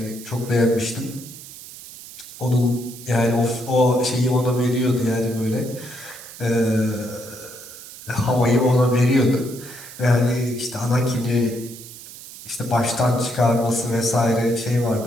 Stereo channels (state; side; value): noise; right; hiss, 15 dB below the sound